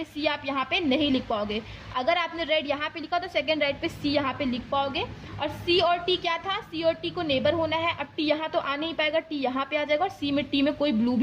सी आप यहाँ पे नहीं लिख पाओगे। अगर आपने रेड यहाँ पे लिखा तो सेकंड राइट पे सी यहाँ पे लिख पाओगे। और सी और टी क्या था, सी और टी को नेबर होना है। अब टी यहाँ तो आ नहीं पाएगा, टी यहाँ पे आ जाएगा, और सी में टी में कोई ब्लू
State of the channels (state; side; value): identical; both; correlation 1.00